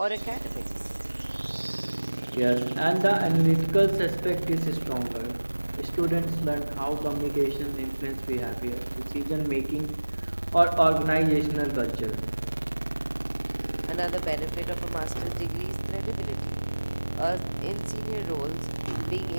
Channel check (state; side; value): inverted; both; correlation -1.00